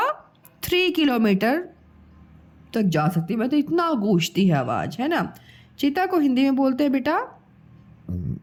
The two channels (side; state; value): both; identical; correlation 1.00